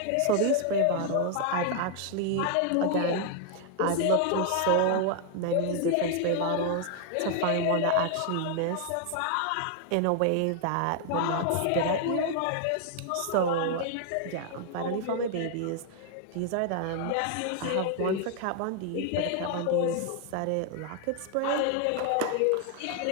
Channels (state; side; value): different; both; correlation 0.00